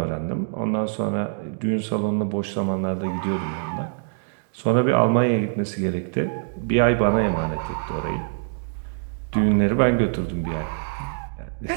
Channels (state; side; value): silent; left; digital silence